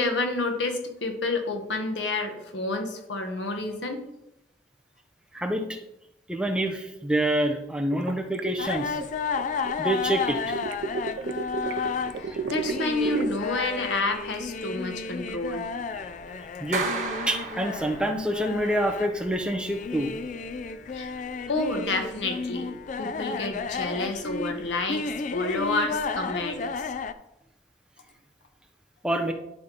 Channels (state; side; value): normal; both; correlation 0.39